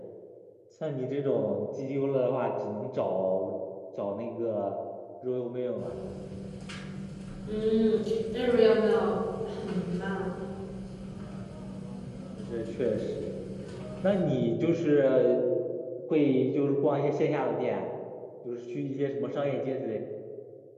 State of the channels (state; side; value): identical; both; correlation 1.00